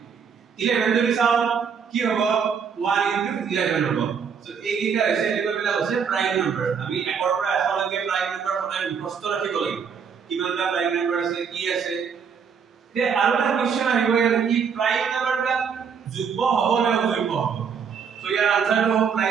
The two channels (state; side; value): quieter; left; 6.6 dB